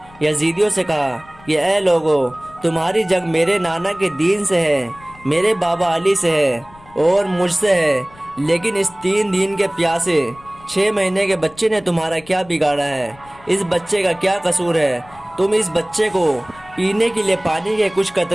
یزیدیوں سے کہا کہ اے لوگو، تمہاری جنگ میرے نانا کے دین سے ہے، میرے بابا علی سے ہے اور مجھ سے ہے، لیکن اس 3 دن کے پیاسے 6 مہینے کے بچے نے تمہارا کیا بگاڑا ہے؟ اس بچے کا کیا قصور ہے؟ تم اس بچے کو پینے کے لیے پانی کے کچھ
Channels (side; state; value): left; noise; rumble, 24 dB below the sound